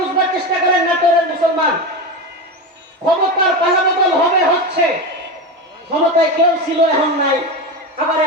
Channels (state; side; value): normal; both; correlation 0.19